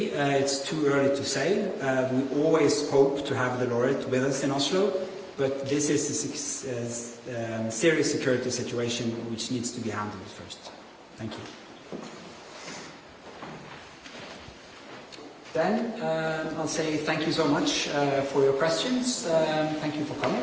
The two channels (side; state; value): both; identical; correlation 1.00